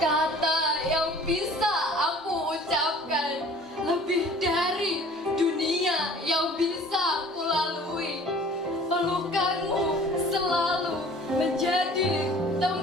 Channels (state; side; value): normal; both; correlation 0.48